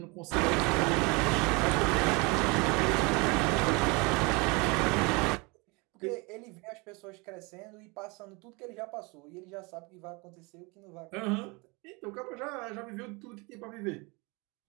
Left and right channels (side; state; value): left; quieter; 27.9 dB